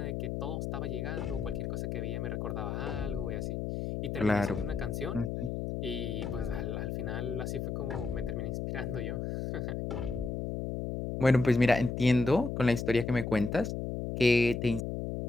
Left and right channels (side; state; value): left; noise; hum, 3 dB below the sound